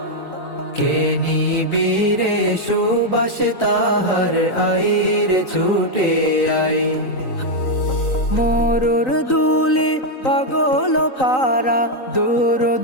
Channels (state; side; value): late; right; 3.9 ms